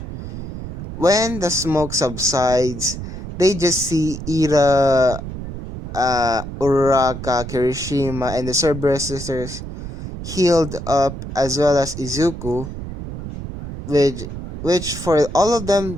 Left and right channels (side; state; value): right; noise; rumble, 9 dB below the sound